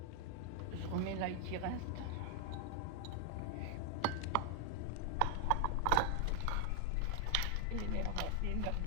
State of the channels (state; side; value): different; both; correlation 0.00